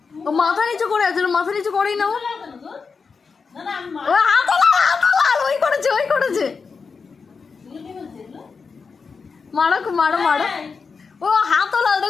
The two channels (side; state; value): right; quieter; 5.1 dB